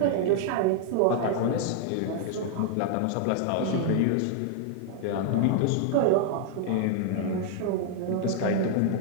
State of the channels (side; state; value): both; different; correlation -0.01